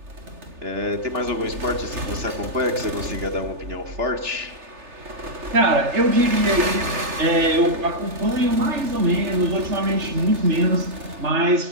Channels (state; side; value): late; left; 3.4 ms